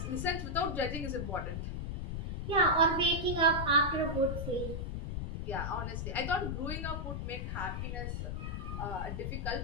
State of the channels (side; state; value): left; noise; rumble, 3 dB below the sound